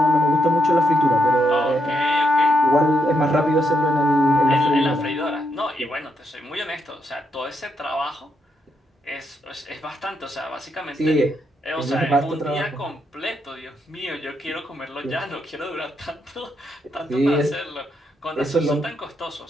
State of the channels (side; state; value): both; normal; correlation 0.79